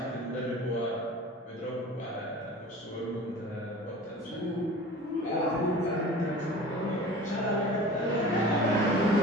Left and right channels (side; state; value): both; normal; correlation 0.40